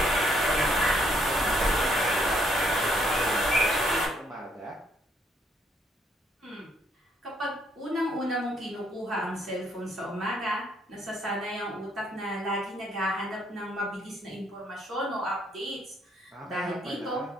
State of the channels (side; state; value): both; normal; correlation 0.70